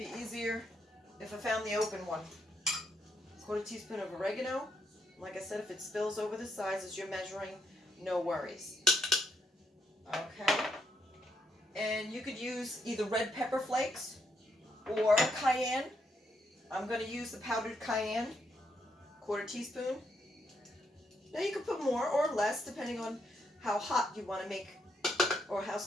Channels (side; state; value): both; normal; correlation 0.77